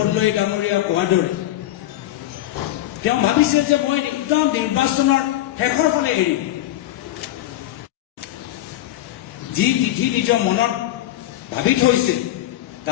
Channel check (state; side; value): quieter; right; 14.4 dB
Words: ডাঙৰীয়া কোৱাৰ দৰে তেওঁ ভাবিছিল যে মই একদম নিৰ্বাচনৰ শেষৰ ফালে এৰিম, যি তিথি নিজৰ মনত ভাবি থৈছিল